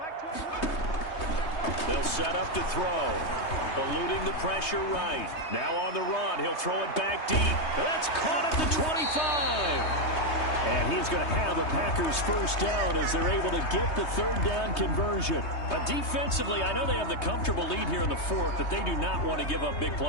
They'll set up to throw. Eluding the pressure right. Now on the run. He'll throw it back deep. That's caught at the 25. And he is going to have a Packers first down as they're able to get the third down conversion. Defensively, I know they have the comfortable lead here in the 4th, but they do not want to give up big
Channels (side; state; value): right; late; 3.2 ms